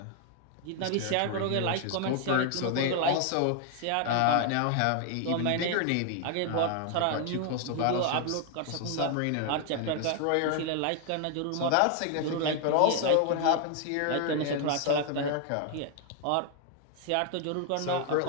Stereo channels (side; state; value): both; different; correlation 0.00